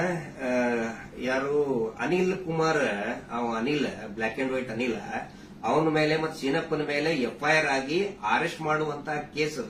ಯಾರು Anil Kumar, Anil black and white Anil, ಅವನ ಮೇಲೆ ಮತ್ತು ಸೀನಪ್ಪನ ಮೇಲೆ ಎಫ್ಐಆರ್ ಆಗಿ ಅರೆಸ್ಟ್ ಮಾಡುವಂತ ಕೇಸ್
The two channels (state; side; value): identical; both; correlation 1.00